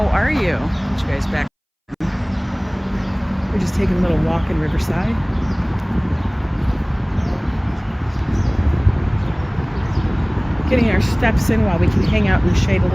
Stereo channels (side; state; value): both; identical; correlation 1.00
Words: are you? Get you guys back. We're just taking a little walk in Riverside. Getting our steps in while we can hang out in the shade a